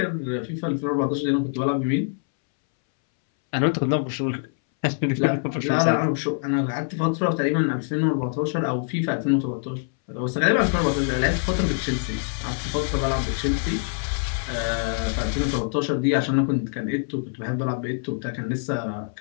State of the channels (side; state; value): right; silent; 62 dB below the other